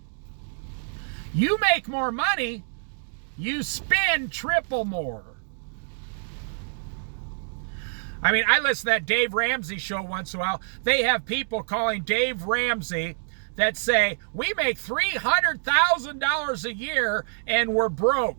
You make more money, you spend triple more. I mean, I listen to that Dave Ramsey show once in a while. They have people calling Dave Ramsey that say, we make $300,000 a year and we're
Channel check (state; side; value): silent; left; digital silence